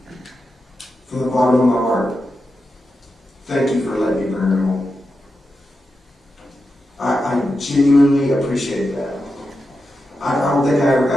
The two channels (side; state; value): both; normal; correlation 0.89